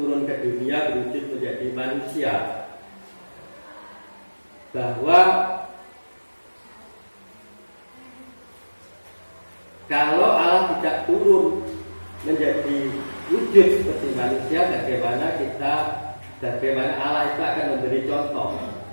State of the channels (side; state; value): both; inverted; correlation -1.00